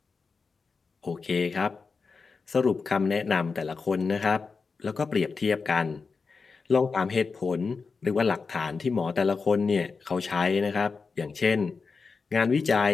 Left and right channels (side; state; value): right; quieter; 4.7 dB